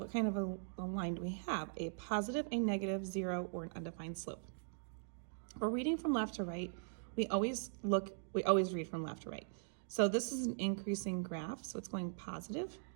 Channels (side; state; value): left; silent; digital silence